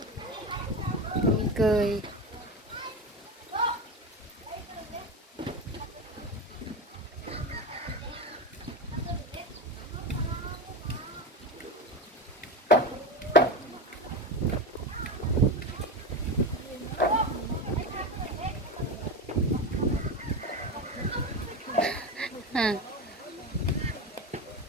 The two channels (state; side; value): normal; both; correlation 0.21